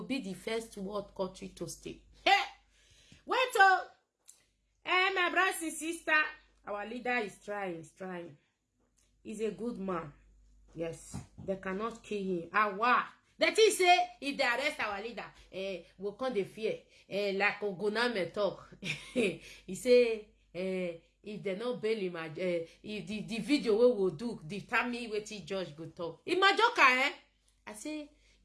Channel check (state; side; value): identical; both; correlation 1.00